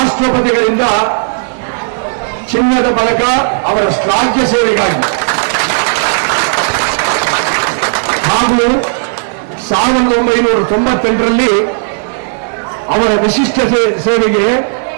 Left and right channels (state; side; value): silent; left; digital silence